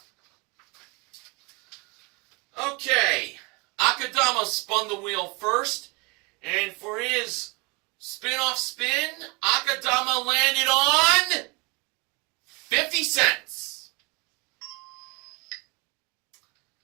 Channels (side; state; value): left; quieter; 28.9 dB